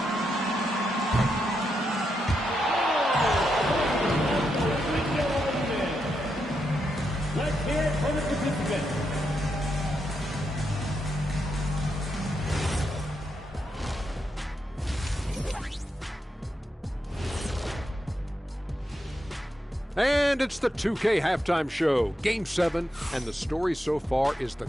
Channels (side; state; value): both; normal; correlation 0.84